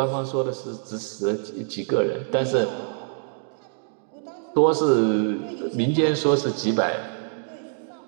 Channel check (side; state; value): left; silent; digital silence